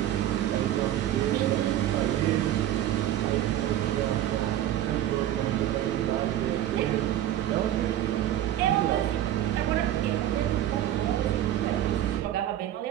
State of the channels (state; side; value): quieter; left; 12.3 dB